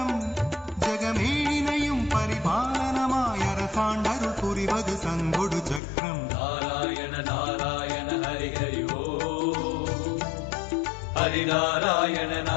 ஜகமேழினையும் பரிபாலனமாய் அரசாண்டருள் புரிவது சங்கொடு சக்கரம். நாராயண நாராயண ஹரி ஹரி ஓ ஹரி நாராயண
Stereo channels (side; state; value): right; drops out; at 5.8 s